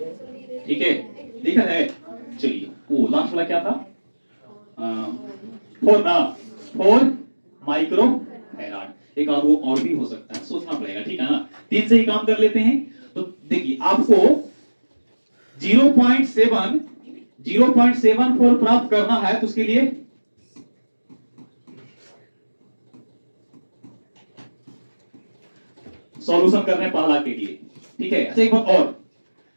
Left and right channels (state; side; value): inverted; both; correlation -1.00